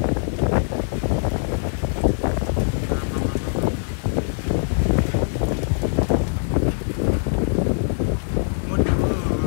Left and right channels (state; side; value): silent; right; 64 dB below the other